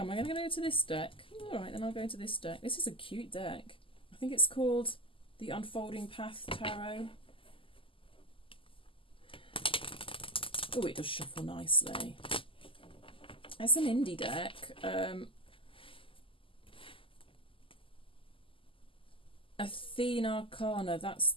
I going to go to this deck? All right, then I'll go into this deck. This is a cute deck. I think it's called the Unfolding Path Tarot. Oh, it does shuffle nicely. It's an indie deck. Athena Arcana, that's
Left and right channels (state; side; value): late; right; 0.25 ms